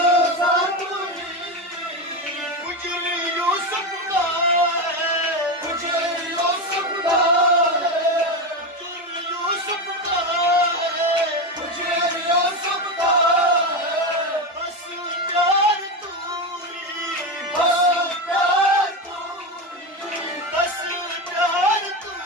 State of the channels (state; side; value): normal; both; correlation 0.15